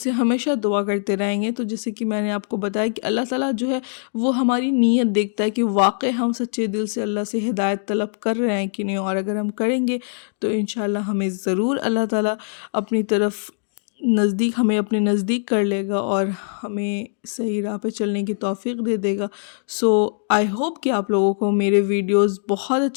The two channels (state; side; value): silent; right; digital silence